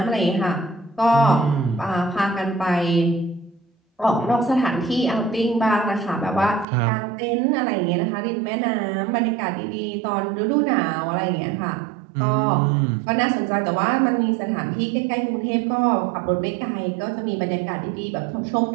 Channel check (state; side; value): drops out; left; at 6.7 s